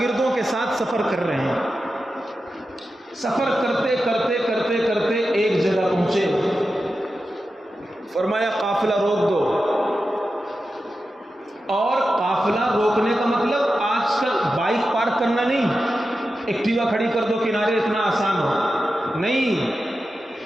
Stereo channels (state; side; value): normal; both; correlation 0.91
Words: کے ساتھ سفر کر رہے ہیں۔ سفر کرتے کرتے کرتے کرتے ایک جگہ پہنچے، فرمایا قافلہ روک دو۔ اور قافلہ روکنے کا مطلب آج کل بائک پارک کرنا نہیں، ایکٹیوا کھڑی کر دو کنارے، اتنا آسان ہو نہیں۔